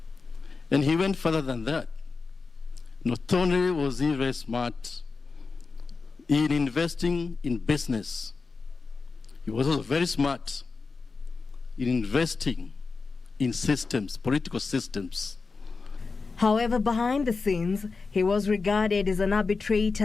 And he went further than that. Not only was he very smart in investing in business, he was also very smart in investing in systems, political systems. However, behind the scenes, he was regarded as an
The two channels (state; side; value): quieter; right; 4.4 dB